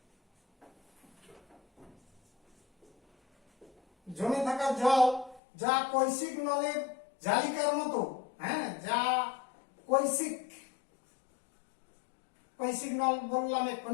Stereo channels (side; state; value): right; drops out; at 5.4 s